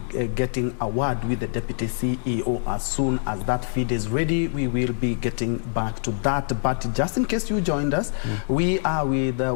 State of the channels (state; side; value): silent; right; digital silence